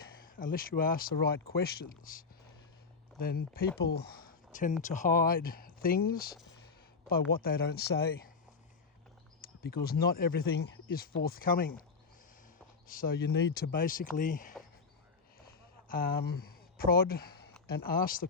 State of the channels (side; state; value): right; quieter; 4.8 dB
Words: unless you ask the right questions, then people tend to hide things by what they don't say, because not everything is forthcoming. So you need to basically prod and ask the